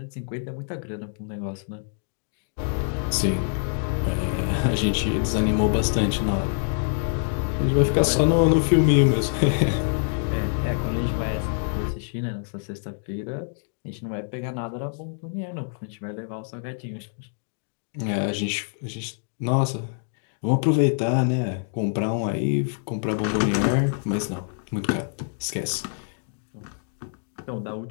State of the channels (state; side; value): silent; right; digital silence